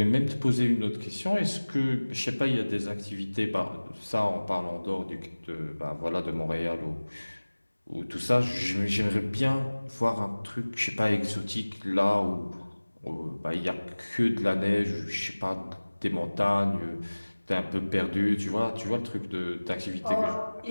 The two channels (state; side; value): inverted; both; correlation -1.00